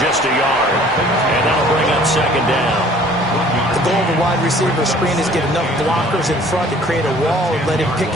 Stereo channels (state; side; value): normal; both; correlation 0.53